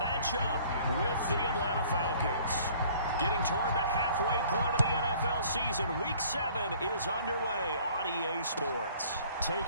up with the Atlanta Falcons. Getting toward the halfway point of the NFL season, Week 7 is underway on EA Sports.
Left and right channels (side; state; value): both; inverted; correlation -0.54